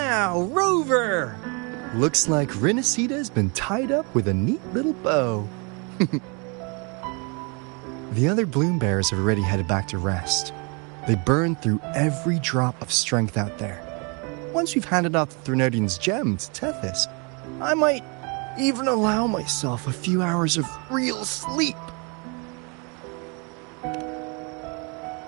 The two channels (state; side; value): quieter; left; 32.9 dB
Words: Rover! Looks like Renacita's been tied up with a neat little bow. The other bloom bearers have already headed back to rest. They burned through every drop of strength out there. Once we've handed off the Threnodian's gem to Tethys, I might even allow myself a few hours of real sleep.